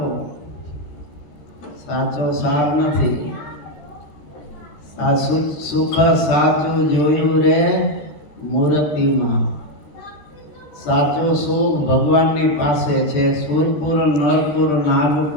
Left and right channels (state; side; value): late; right; 13 ms